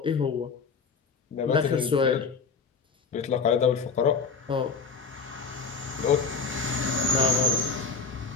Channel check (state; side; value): quieter; right; 5.0 dB